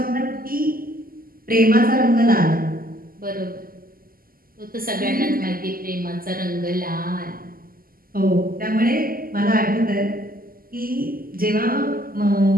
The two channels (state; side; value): late; left; 0.42 ms